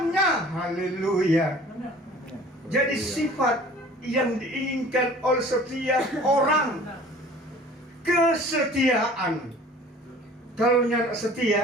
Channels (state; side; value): normal; both; correlation 0.47